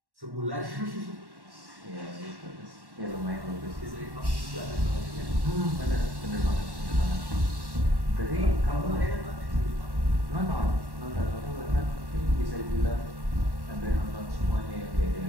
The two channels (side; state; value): left; late; 1.1 ms